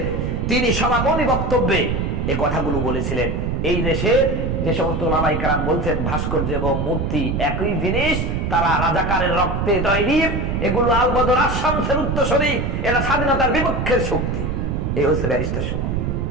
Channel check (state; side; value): noise; right; rumble, 1 dB below the sound